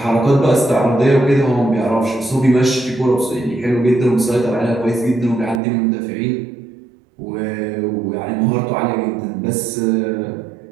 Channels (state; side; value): drops out; left; at 5.6 s